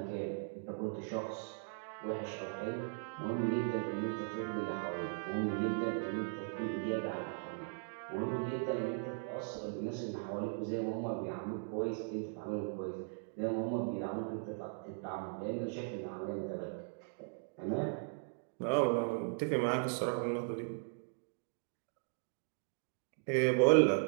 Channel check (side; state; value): left; silent; digital silence